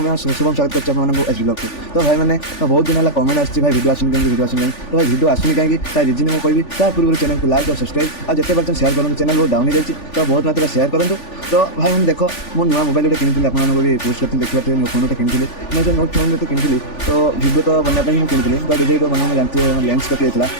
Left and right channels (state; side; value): late; right; 3.4 ms